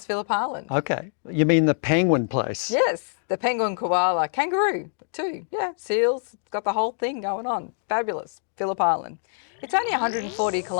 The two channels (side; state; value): right; silent; digital silence